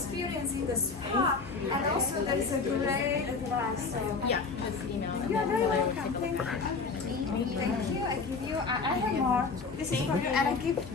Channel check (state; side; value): quieter; right; 4.5 dB